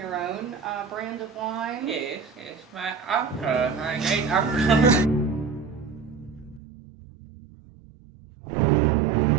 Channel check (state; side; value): drops out; left; at 6.6 s